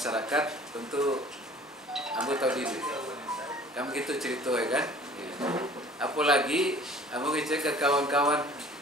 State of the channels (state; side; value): normal; both; correlation 0.49